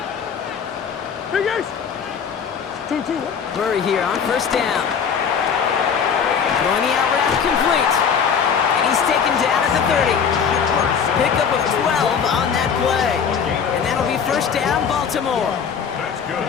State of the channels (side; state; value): right; quieter; 6.9 dB